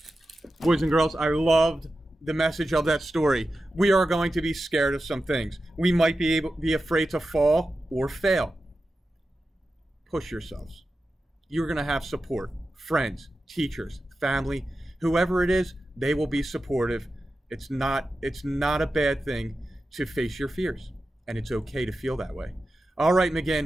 Boys and girls, I loved the message of that story. We are going to be scared of some things. We might be afraid to fall or fail. Push yourselves. You're going to have support. Friends, teachers, family, whoever it is, they will be supportive. It's not a bad thing to face your fears, and it's okay to feel that way. All right,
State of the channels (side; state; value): both; normal; correlation 0.92